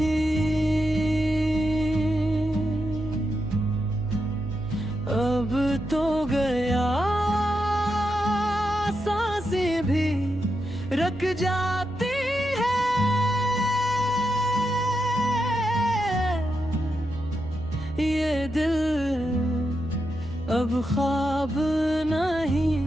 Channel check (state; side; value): noise; right; hum, 16 dB below the sound